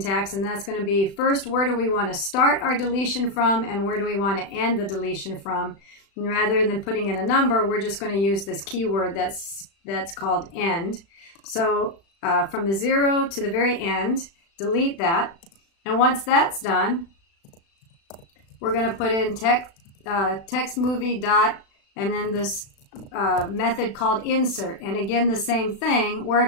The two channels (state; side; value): late; right; 36 ms